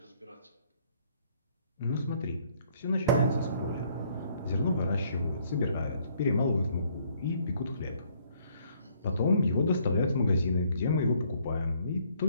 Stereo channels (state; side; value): inverted; both; correlation -0.65